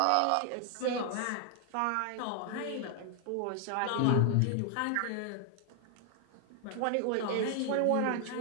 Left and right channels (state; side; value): different; both; correlation 0.00